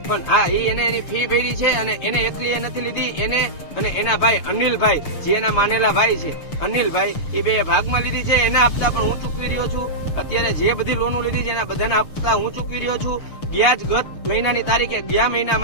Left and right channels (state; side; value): late; right; 6.9 ms